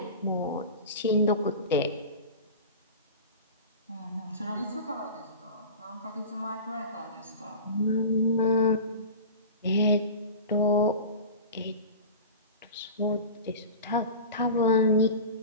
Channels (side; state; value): both; inverted; correlation -0.33